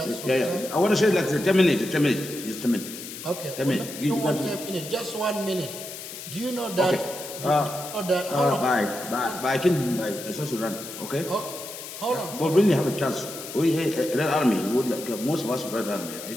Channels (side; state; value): left; noise; hiss, 11 dB below the sound